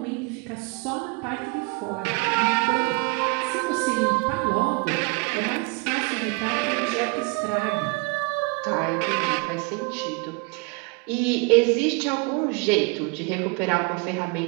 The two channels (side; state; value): left; quieter; 28.1 dB